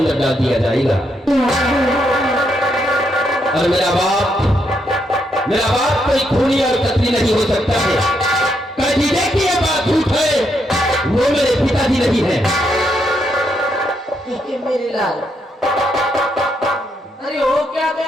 डाल दिया जाएगा। और मेरा बाप कोई खूनी और कतली नहीं हो सकता है। कभी देखिए बात झूठ है, वो मेरे पिताजी नहीं है। मेरे लाल, अरे हो क्या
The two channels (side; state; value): both; normal; correlation 0.78